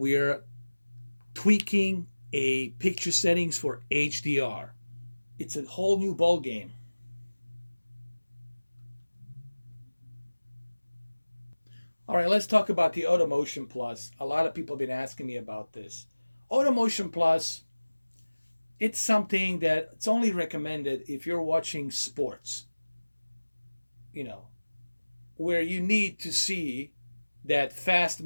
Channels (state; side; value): inverted; both; correlation -1.00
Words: tweaking a picture settings for HDR. It's a whole new ball game. All right, let's talk about the AutoMotion Plus. A lot of people have been asking me about this. AutoMotion Plus, it's something that it's only recommended if you're watching sports, where you need to see that fast